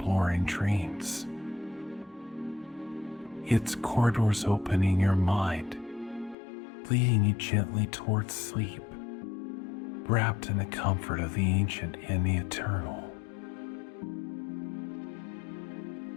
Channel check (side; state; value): right; drops out; at 6.4 s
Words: in dreams. Its corridors open in your mind, leading you gently towards sleep, wrapped in the comfort of the ancient and the eternal.